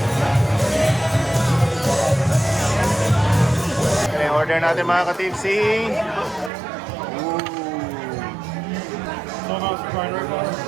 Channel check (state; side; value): drops out; left; at 6.5 s